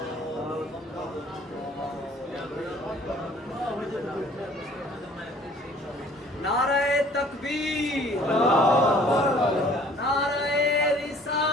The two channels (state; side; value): normal; both; correlation 0.54